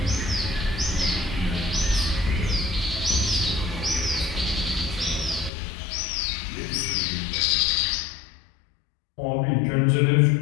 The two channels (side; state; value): right; drops out; at 5.5 s